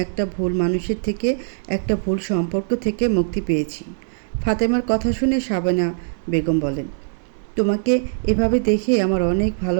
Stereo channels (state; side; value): silent; left; digital silence